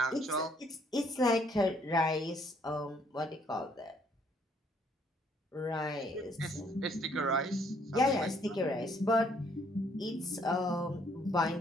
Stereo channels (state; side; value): normal; both; correlation 0.66